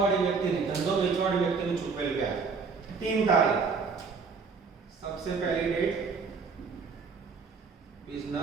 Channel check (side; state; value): left; quieter; 5.0 dB